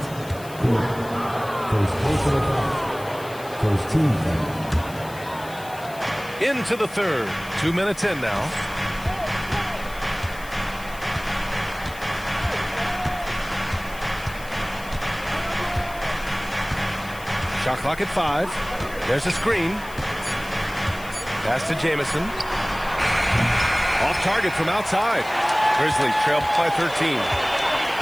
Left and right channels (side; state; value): left; noise; hiss, 18 dB below the sound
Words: First team foul. Into the third. 2 minutes in now. Shot clock at 5. There's a screen. Pass to Jamison. Off target from outside. Grizzlies trail by 13.